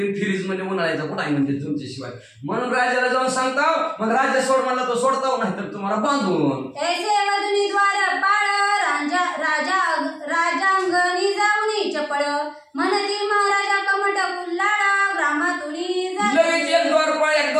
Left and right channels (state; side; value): identical; both; correlation 1.00